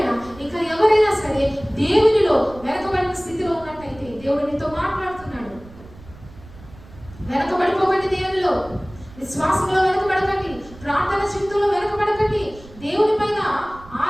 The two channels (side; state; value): right; noise; rumble, 20 dB below the sound